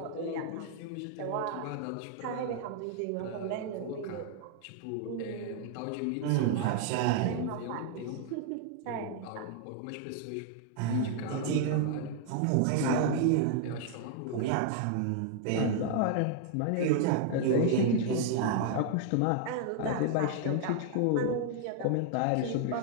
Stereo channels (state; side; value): different; both; correlation 0.00